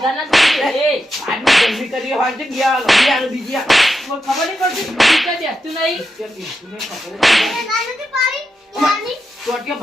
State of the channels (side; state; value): both; normal; correlation 0.87